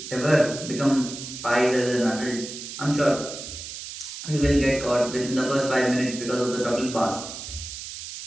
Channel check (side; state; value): right; noise; hiss, 10 dB below the sound